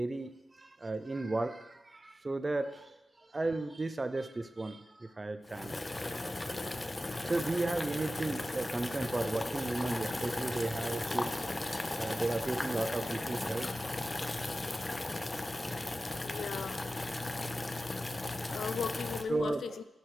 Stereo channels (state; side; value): normal; both; correlation 0.94